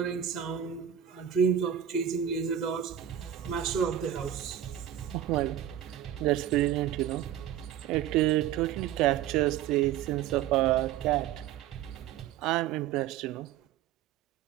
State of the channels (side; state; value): left; quieter; 10.6 dB